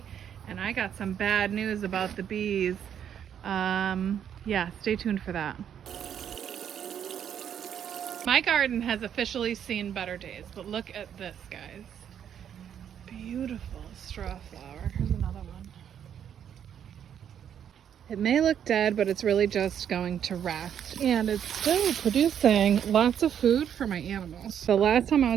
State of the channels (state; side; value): quieter; left; 9.0 dB